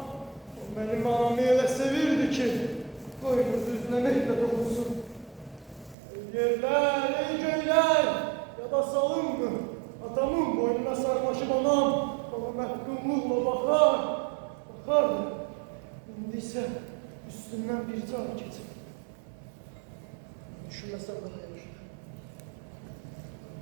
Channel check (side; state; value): left; drops out; at 6.0 s